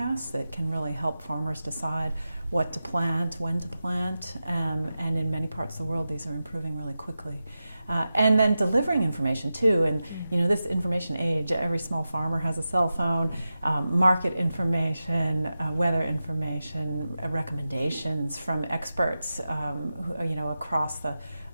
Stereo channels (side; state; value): both; inverted; correlation -0.93